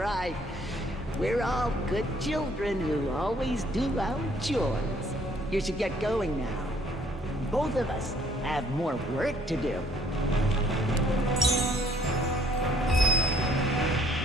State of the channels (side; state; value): both; normal; correlation 0.62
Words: We're all good children who always do our chores. You should get going now. Both of us have more work to do.